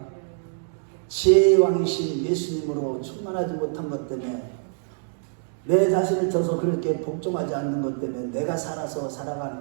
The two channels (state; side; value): silent; left; digital silence